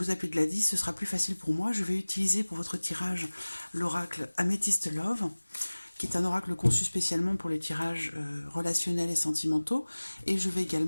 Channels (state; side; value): inverted; both; correlation -1.00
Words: vous appeler Gladys, ce sera plus facile pour moi. Je vais utiliser pour votre tirage l'oracle Amethyst Love, qui est un oracle conçu spécialement pour les tirages relationnels et sentimentaux. Et je vais